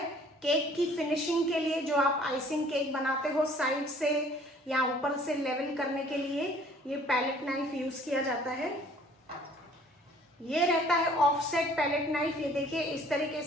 केक की फिनिशिंग के लिए। जो आप आइसिंग केक बनाते हो, साइड से या ऊपर से लेवल करने के लिए ये पैलेट नाइफ यूज किया जाता है। ये रहता है ऑफसेट पैलेट नाइफ। ये देखिए, इस तरीके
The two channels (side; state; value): both; normal; correlation 0.55